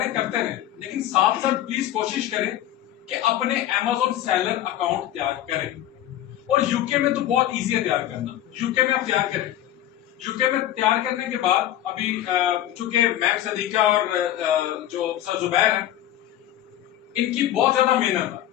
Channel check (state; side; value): quieter; right; 12.6 dB